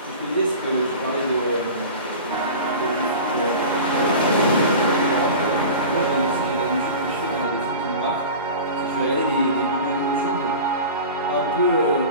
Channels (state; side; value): inverted; both; correlation -0.35